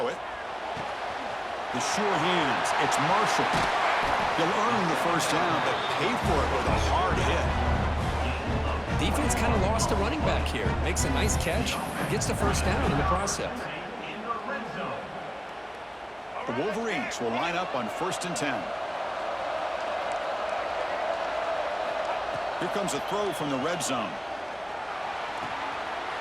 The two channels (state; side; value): identical; both; correlation 1.00